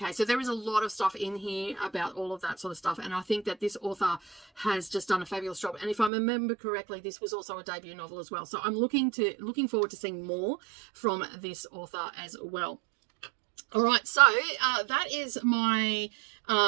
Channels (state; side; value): drops out; left; at 6.1 s